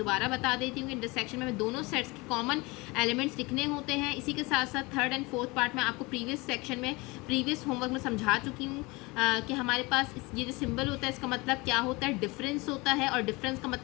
बता देती हूँ कि इंटरसेक्शन में दोनों सेट्स के कॉमन एलिमेंट्स लिखने होते हैं। इसी के साथ साथ थर्ड एंड फोर्थ पार्ट में आपको प्रीवियस सेक्शन में प्रीवियस होमवर्क में समझा चुकी हूँ कि हमारे पास ये जो सिंबल होता है इसका मतलब क्या होता है, डिफरेंस होता है। और डिफरेंस का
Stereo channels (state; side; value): quieter; right; 24.6 dB